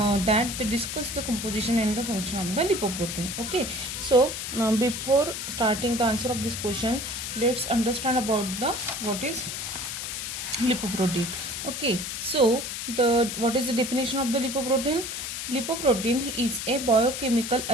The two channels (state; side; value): noise; left; hiss, 5 dB below the sound